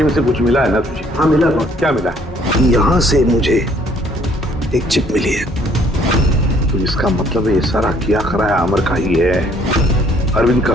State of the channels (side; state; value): both; normal; correlation 0.62